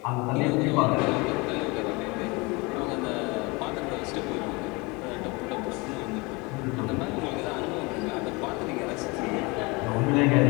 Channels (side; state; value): right; quieter; 26.4 dB